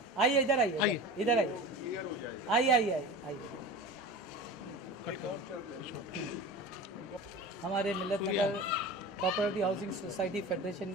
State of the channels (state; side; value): normal; both; correlation 0.33